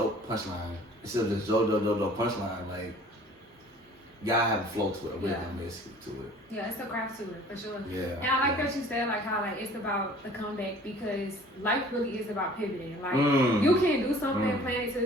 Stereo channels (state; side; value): normal; both; correlation 0.50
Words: instead of just joke, punchline, like, you gotta have a flow to it, a rhythm basically to it. Yeah, it's a craft to it, for sure. Yeah. And I like that you said, like, how, like, it's about the comeback, because life really is about pivoting. Like, you can do something, plan it to